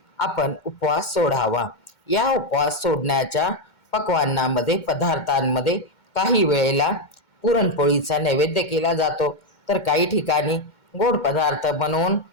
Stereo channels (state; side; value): late; right; 2.2 ms